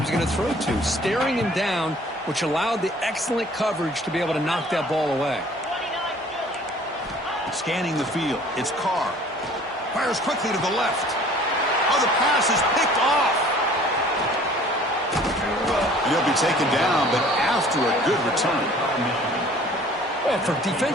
going to throw to, staring him down, which allowed the excellent coverage to be able to knock that ball away. Scanning the field, it's Carr. Fires quickly to the left. Oh, the pass is picked off. And he'll be taken down, but after a good return. Well, for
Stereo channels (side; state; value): both; normal; correlation 0.51